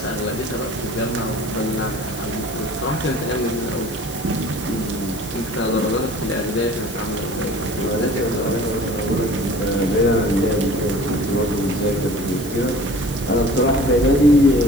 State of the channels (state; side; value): noise; left; hiss, 16 dB below the sound